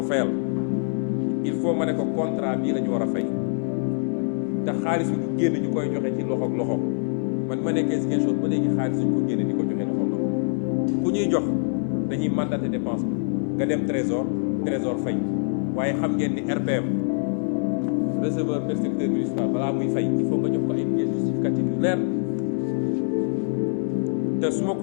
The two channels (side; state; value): right; silent; digital silence